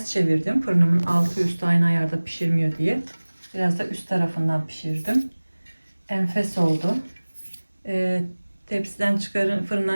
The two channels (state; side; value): inverted; both; correlation -1.00